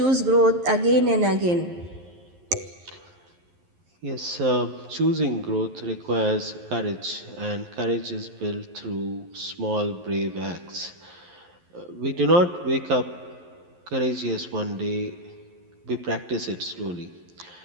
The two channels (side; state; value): left; late; 11 ms